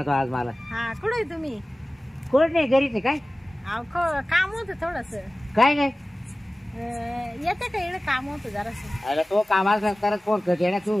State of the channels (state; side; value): normal; both; correlation 0.97